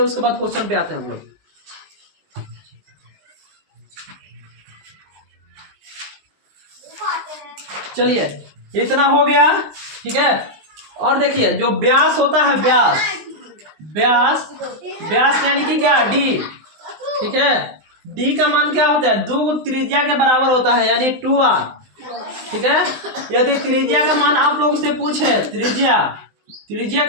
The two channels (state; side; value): late; left; 19 ms